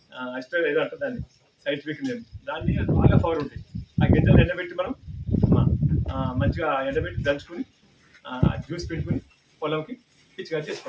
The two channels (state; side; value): identical; both; correlation 1.00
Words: అసిటేట్ ఏదో అంటారు దాన్ని, సైంటిఫిక్ నేమ్. దాన్ని బాగా పవర్ ఉంటాయి. ఆ గింజలు ఎండబెట్టి మనం మంచిగా ఎండబెట్టి దంచుకొని జ్యూస్ పెట్టుకుని పొలంకి పిచ్చిగా